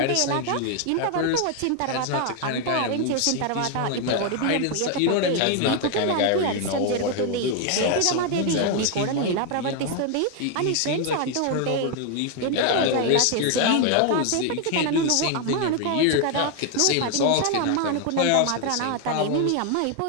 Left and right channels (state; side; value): different; both; correlation 0.01